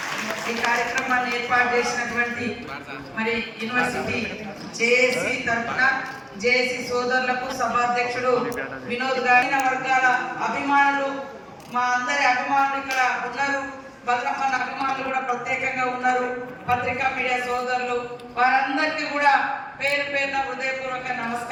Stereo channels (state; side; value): identical; both; correlation 1.00